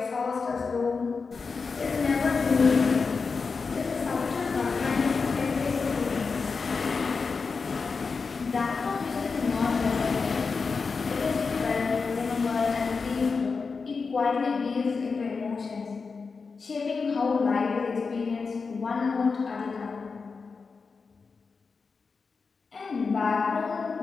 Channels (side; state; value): right; quieter; 4.8 dB